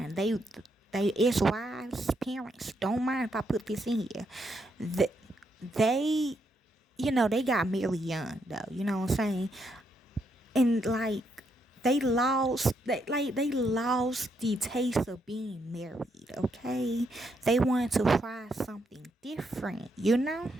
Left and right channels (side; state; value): both; normal; correlation 0.78